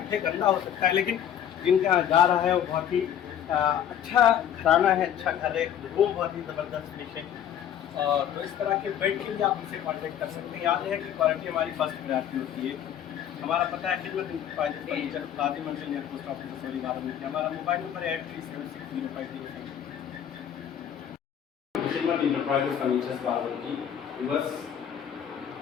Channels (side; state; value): right; quieter; 9.7 dB